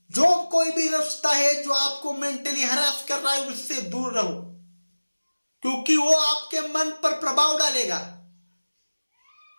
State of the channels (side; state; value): both; inverted; correlation -1.00